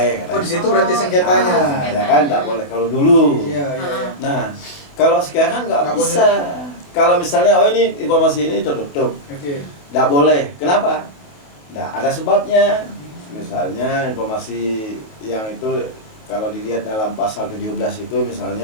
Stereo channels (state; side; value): late; right; 28 ms